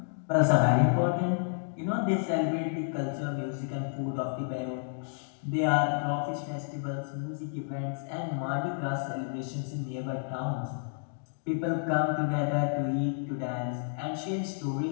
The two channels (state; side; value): silent; right; digital silence